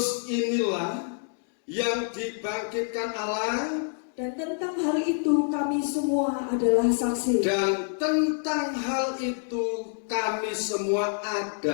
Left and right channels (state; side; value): silent; right; 60 dB below the other